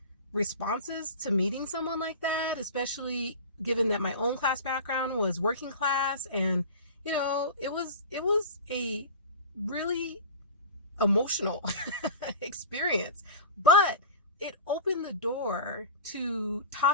responses to meeting someone like that, especially given that my own class background was working class. And, it was a really emotional experience, but it opened the door to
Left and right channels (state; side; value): inverted; both; correlation -0.33